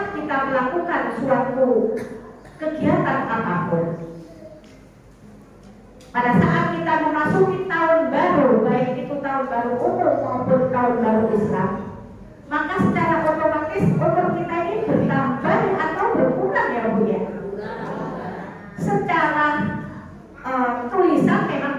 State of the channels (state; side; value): identical; both; correlation 1.00